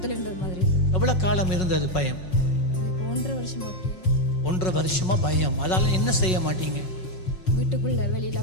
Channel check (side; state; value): right; late; 5.4 ms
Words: இருந்தது மாதிரி. எவ்வளவு காலம் இருந்தது பயம்? 1.5 வருஷமா. 1.5 வருஷமா பயம். அதால என்ன செய்ய மாட்டீங்க? வீட்டுக்குள்ள வெளியில